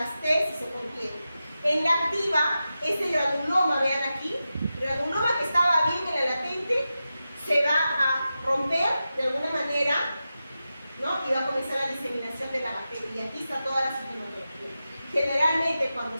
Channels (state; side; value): inverted; both; correlation -0.92